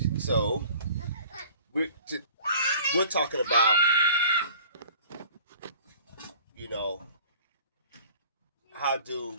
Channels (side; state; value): both; inverted; correlation -0.48